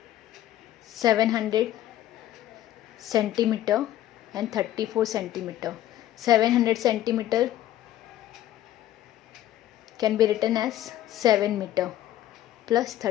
700 centimeter and 34 centimeter. 700 centimeter can be written as 7 meter plus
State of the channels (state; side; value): quieter; right; 13.1 dB